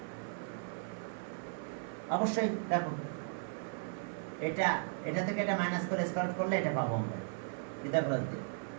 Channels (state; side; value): silent; left; 53 dB below the other